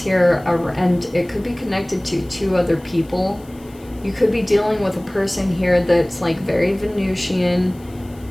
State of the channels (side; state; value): left; noise; hiss, 27 dB below the sound